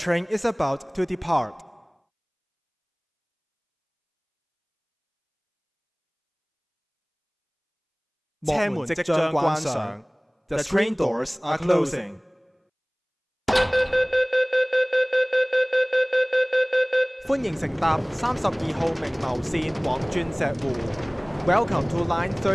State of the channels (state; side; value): identical; both; correlation 1.00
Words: is about to depart. 車門即將關上。The train doors are closing. 歡迎乘搭32號明牟線往鑽石湖。Welcome to Line